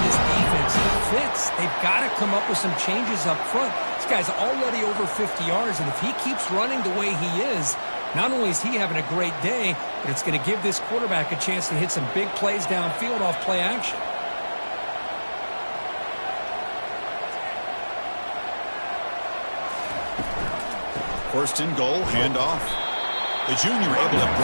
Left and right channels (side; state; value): both; inverted; correlation -1.00